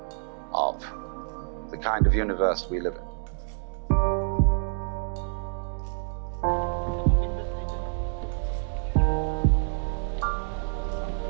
of the kind of universe we live in.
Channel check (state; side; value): silent; left; digital silence